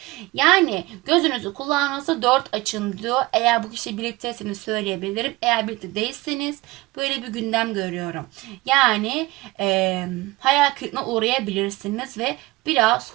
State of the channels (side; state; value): left; quieter; 20.8 dB